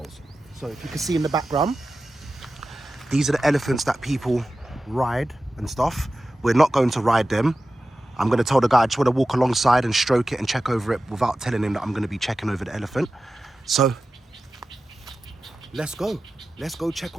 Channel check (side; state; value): both; normal; correlation 0.94